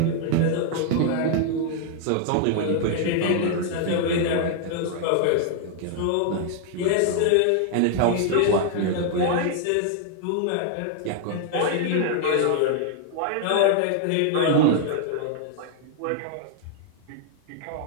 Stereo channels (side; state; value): both; different; correlation 0.00